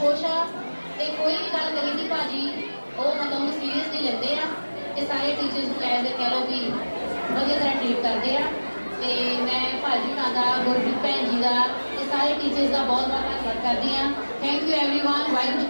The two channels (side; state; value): both; inverted; correlation -1.00